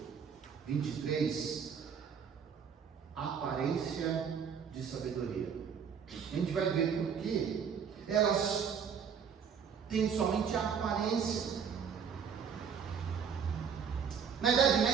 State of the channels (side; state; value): left; quieter; 7.0 dB